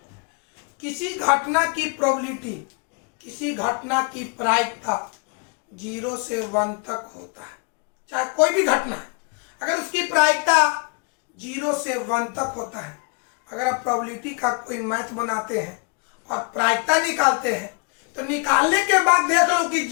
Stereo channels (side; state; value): right; quieter; 35.7 dB